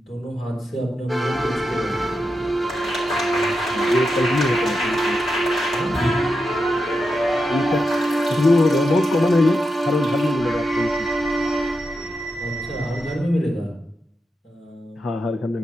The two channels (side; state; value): both; normal; correlation 0.87